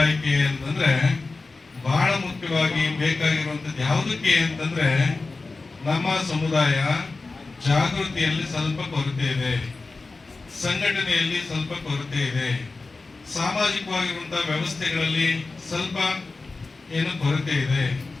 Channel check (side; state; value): right; quieter; 3.7 dB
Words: ಅಂತಂದ್ರೆ, ಬಹಳ ಮುಖ್ಯವಾಗಿ ಬೇಕಾಗಿರುವಂಥದ್ದು ಯಾವುದಕ್ಕೆ ಅಂತಂದ್ರೆ, ನಮ್ಮ ಸಮುದಾಯ ಜಾಗೃತಿಯಲ್ಲಿ ಸ್ವಲ್ಪ ಕೊರತೆ ಇದೆ, ಸಂಘಟನೆಯಲ್ಲಿ ಸ್ವಲ್ಪ ಕೊರತೆ ಇದೆ, ಸಾಮಾಜಿಕವಾಗಿರುವಂತಹ ವ್ಯವಸ್ಥೆಗಳಲ್ಲಿ ಸ್ವಲ್ಪ ಏನು ಕೊರತೆ ಇದೆ,